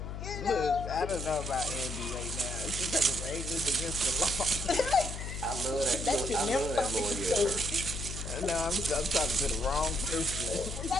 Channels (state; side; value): noise; left; hum, 7 dB below the sound